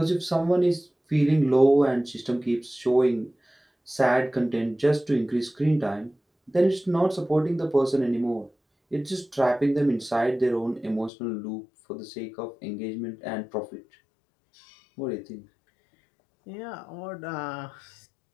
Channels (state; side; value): drops out; right; at 11.1 s